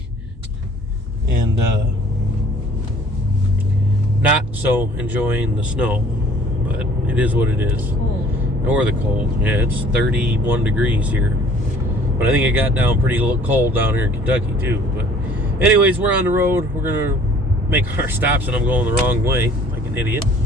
and not so enjoying the snow, but it is what it is. Cold. Or the cold. Yeah, it's 31 degrees here. But I think it got down pretty cold down here in Kentucky too. But anyways, we're on the road. We're gonna make our stops, and I'm going the wrong way like an idiot.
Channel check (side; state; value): both; normal; correlation 0.53